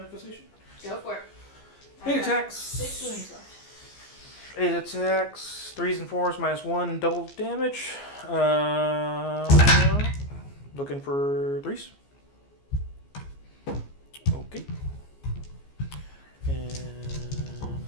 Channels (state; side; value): late; right; 14 ms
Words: Go for it. 8 attacks. 6 wounds left. 8 attacks, 3s and 4s -1, double damage. Looking for 3s. Okay. And